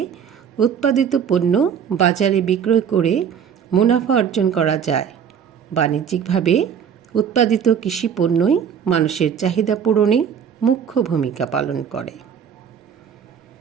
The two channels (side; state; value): left; quieter; 7.8 dB